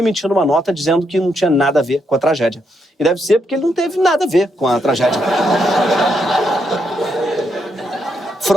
uma nota dizendo que não tinha nada a ver com a tragédia. E deve ser porque ele não teve nada a ver com a tragédia.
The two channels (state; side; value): normal; both; correlation 0.78